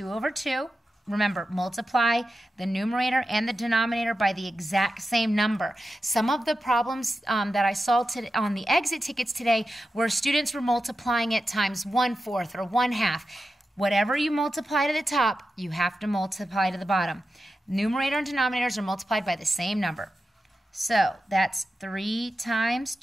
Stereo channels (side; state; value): both; normal; correlation 0.91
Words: over 2. Remember, multiply the numerator and the denominator by the exact same number. Some of the problems that I saw on the exit tickets today were students were multiplying it times 1/4 or 1/2. Whatever you multiply to the top, you have to multiply to the bottom. Numerator and denominators are multiplied by the same number. So that's 3 times